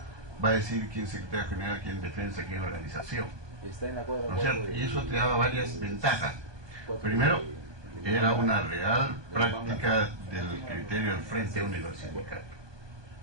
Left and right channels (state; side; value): late; left; 1.2 ms